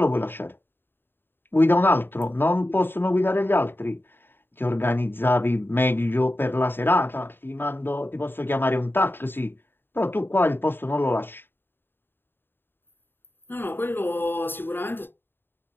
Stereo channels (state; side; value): late; right; 0.10 ms